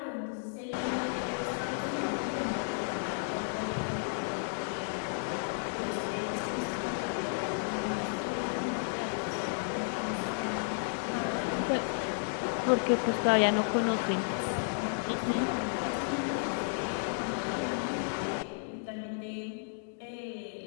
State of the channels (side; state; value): right; silent; digital silence